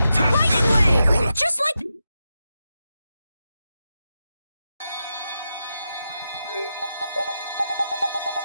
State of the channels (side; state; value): both; inverted; correlation -0.88